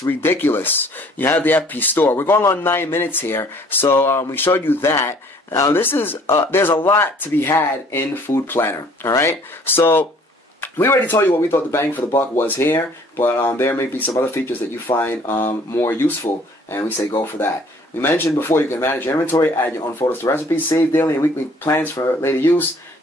ridiculous. You have the FP store. We're going on 9 minutes here. So, we showed you that. Now, this is, there's a lot to be had in Food Planner. Alright? So, we already told you what we thought the bang for the buck was here, but there may be some other features that you find more useful, and we say go for that. We mentioned before you can manage your inventory, add your own photos to recipes, save daily and weekly plans for later use.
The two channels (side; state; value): both; normal; correlation 0.56